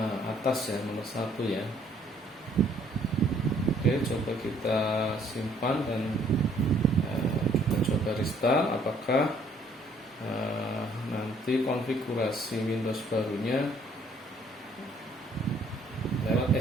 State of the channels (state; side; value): normal; both; correlation 0.62